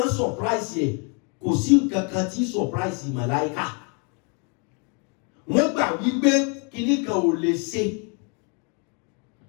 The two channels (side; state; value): right; quieter; 36.6 dB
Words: surprise ẹ̀ kò sí nǹkan kan tí surprise màláíkà. Wọ́n gbà wípé kíní kan ò lè ṣe